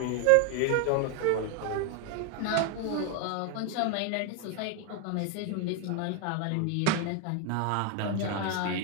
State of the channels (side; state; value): both; different; correlation 0.01